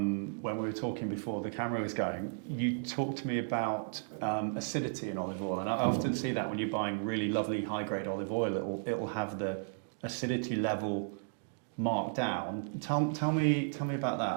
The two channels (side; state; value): left; silent; digital silence